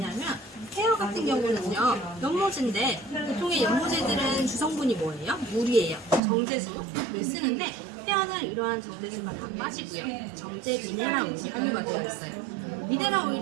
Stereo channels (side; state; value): left; drops out; at 6.2 s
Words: 헤어 같은 경우는요, 연모제인데 보통의 연모제들은 주성분이 뭐예요? 물이에요. 정제수를 쓰는데 헤어는 이러한 정제수가 다 빠지고요. 정제 미네랄 오일이 함유가 되어 있어요. 미네랄